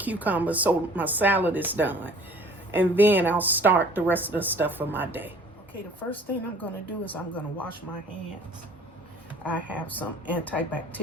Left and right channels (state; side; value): normal; both; correlation 0.51